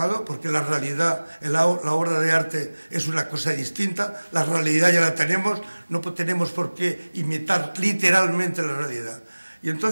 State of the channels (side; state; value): both; inverted; correlation -1.00